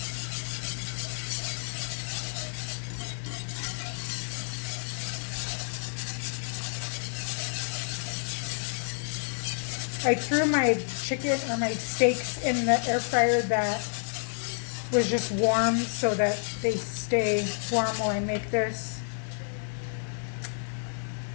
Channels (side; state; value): right; silent; digital silence